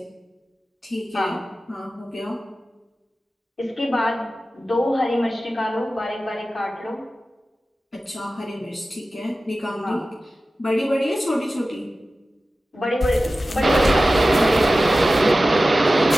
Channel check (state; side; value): normal; both; correlation 0.95